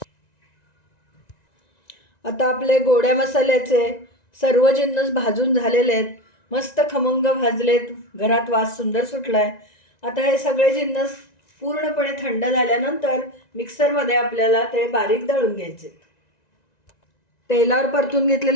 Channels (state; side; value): late; right; 1.9 ms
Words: आता आपले गोड्या मसाल्याचे सर्व जिन्नस भाजून झालेले आहेत. मस्त खमंग भाजलेत. घरात वास सुंदर सुटलाय. आता हे सगळे जिन्नस पूर्णपणे थंड झाल्यानंतर मिक्सरमध्ये आपल्याला ते बारीक दळून घ्यायचे. तेलावर परतून